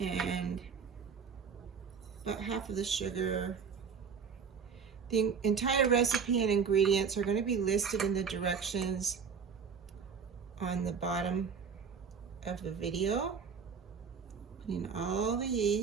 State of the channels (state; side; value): quieter; left; 6.2 dB